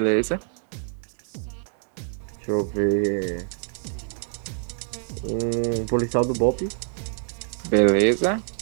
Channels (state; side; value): silent; left; 61 dB below the other